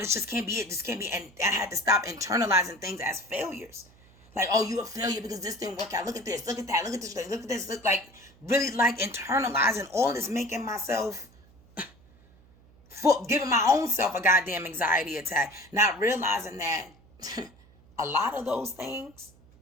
just can't be it. This can't be. And I had to stop internalizing things as failures. Like, oh, you a failure because this didn't work out. Look at this. Look at that. Look at this. Look at this. Look, like, really, like, internalizing all this, making myself, giving my own self a goddamn anxiety attack. Not realizing that a lot of those things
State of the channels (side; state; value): right; noise; hum, 27 dB below the sound